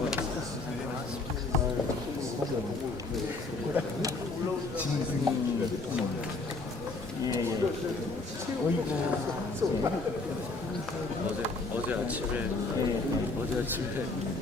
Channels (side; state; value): right; quieter; 3.4 dB